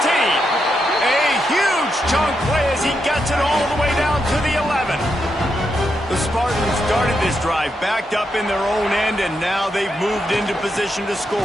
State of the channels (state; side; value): normal; both; correlation 0.83